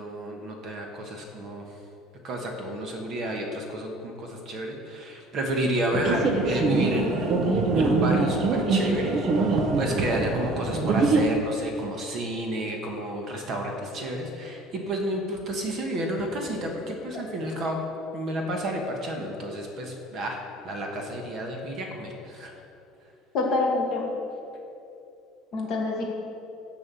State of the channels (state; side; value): normal; both; correlation 0.50